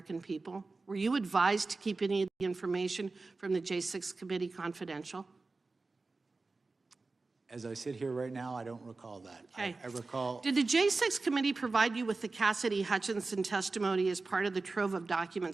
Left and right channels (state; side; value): quieter; left; 3.7 dB